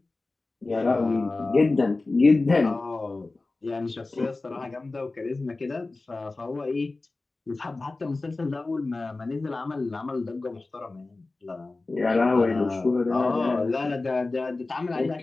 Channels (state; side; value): quieter; right; 3.4 dB